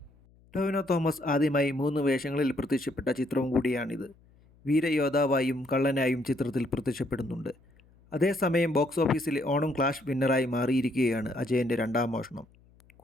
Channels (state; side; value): noise; left; hum, 29 dB below the sound